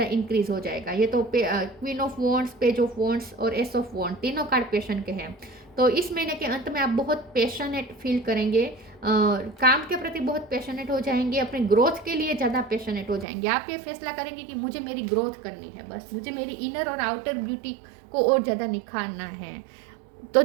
इंक्रीज हो जाएगा। ये तो queen of wands, page of wands और एस ऑफ वॉन्ड तीनों कार्ड पैशन के हैं। तो इस महीने के अंत में आप बहुत पैशनेट फील करेंगे, काम के प्रति बहुत पैशनेट हो जाएंगे, अपने ग्रोथ के लिए ज़्यादा पैशनेट हो जाएंगे। आप ये फैसला करेंगे कि मुझे मेरी ग्रोथ करनी है, बस मुझे मेरी इनर और आउटर ब्यूटी को और ज़्यादा निखारना है। तो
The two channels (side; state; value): left; drops out; at 13.2 s